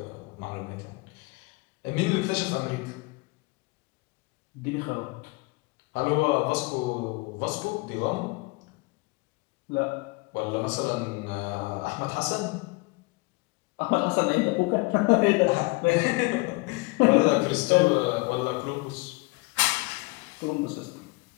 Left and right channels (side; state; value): right; quieter; 25.8 dB